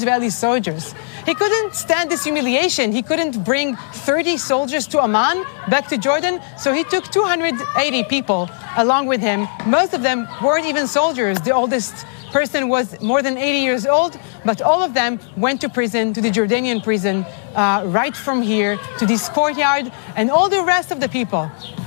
soldiers. He couldn't stand this humiliation. He couldn't bring 30 soldiers to Amman, back to Jordan, so he took 280 people along with him. Most of them weren't even soldiers. The oldest person was more than 80 years old, but all of them went to prison, to the Jordanian prison, right from here to this courtyard, and all the rest of the people,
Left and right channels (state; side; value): silent; right; digital silence